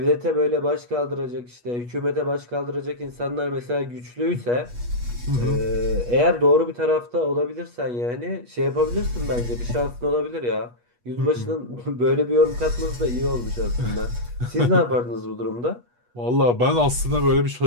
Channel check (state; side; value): late; left; 8.3 ms